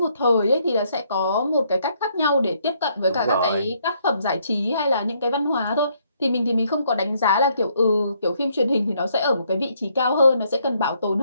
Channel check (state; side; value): inverted; both; correlation -0.71